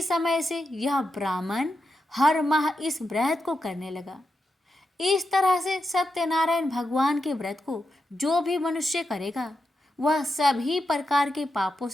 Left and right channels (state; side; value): normal; both; correlation 0.87